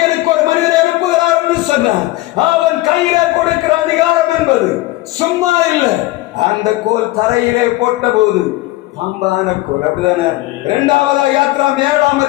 ஒரு மனிதரை அனுப்புகிறார் என்று சொன்னார். அவன் கையிலே கொடுக்கிற அதிகாரம் என்பது சும்மா இல்லை. அந்த கோல் தரையிலே போட்ட போது பாம்பான கோல். அப்படிதானே? 2வது யாத்ராம் 7ஆம்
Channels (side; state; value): right; quieter; 18.3 dB